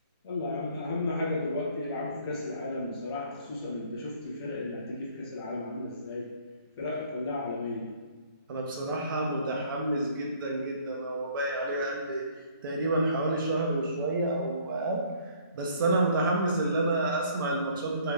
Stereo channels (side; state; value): both; inverted; correlation -0.58